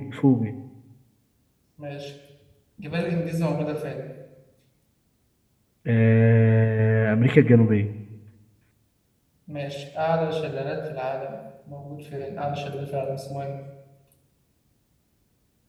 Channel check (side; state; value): both; identical; correlation 1.00